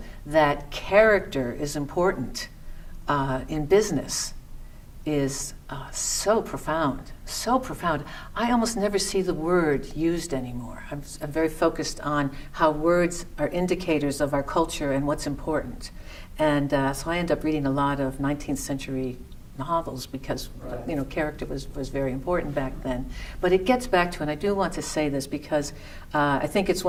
that character is important in business, is so profound, so profound. I almost never see the word used anymore. I'm very focused on how words are indicators of our culture and what's important. And so I end up reading a lot of 19th century novels because, Right. character was very important back then. But it gets back to, and I do want to say this because I think it's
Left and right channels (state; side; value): identical; both; correlation 1.00